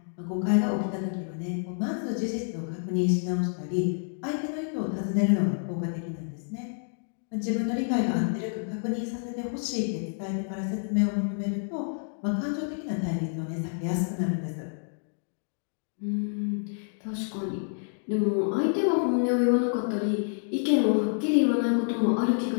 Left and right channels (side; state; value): right; silent; digital silence